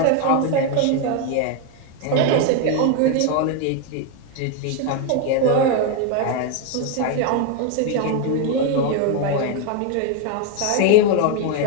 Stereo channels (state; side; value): different; both; correlation 0.01